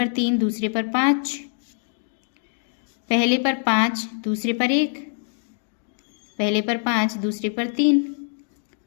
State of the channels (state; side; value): silent; right; 62 dB below the other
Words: 3, दूसरे पर 5, पहले पर 5, दूसरे पर 1, पहले पर 5, दूसरे पर 3,